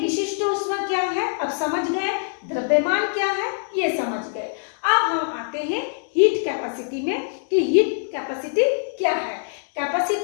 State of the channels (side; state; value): right; silent; 63 dB below the other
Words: ऊष्मा क्या है, अब समझ गए। द्रव्यमान क्या है, ये समझ गए। अब हम आते हैं हीट कैपेसिटी में कि हीट कैपेसिटी क्या है।